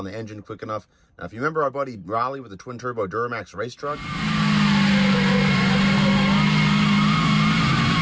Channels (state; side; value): identical; both; correlation 1.00